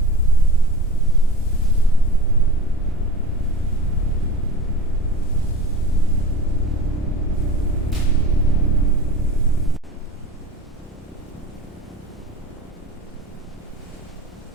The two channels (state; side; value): normal; both; correlation 0.34